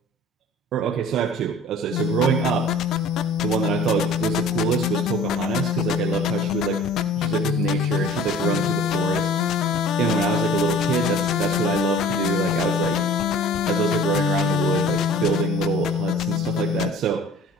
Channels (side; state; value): both; normal; correlation 0.47